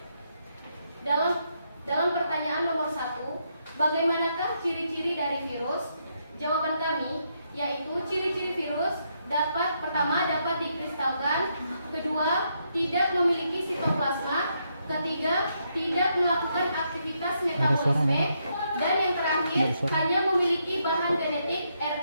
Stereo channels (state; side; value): inverted; both; correlation -0.78